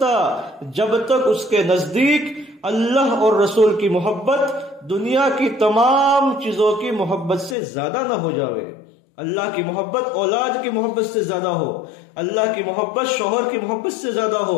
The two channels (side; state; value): right; drops out; at 7.6 s